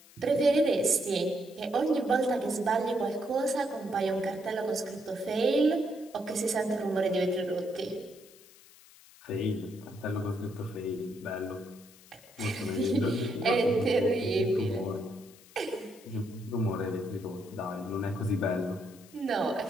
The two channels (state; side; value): noise; left; hiss, 23 dB below the sound